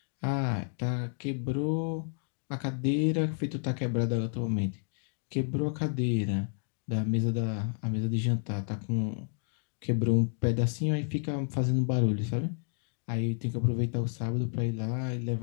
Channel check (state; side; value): silent; right; 57 dB below the other